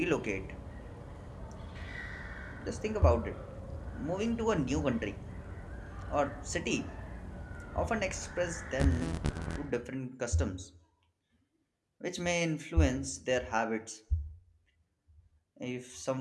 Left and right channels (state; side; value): identical; both; correlation 1.00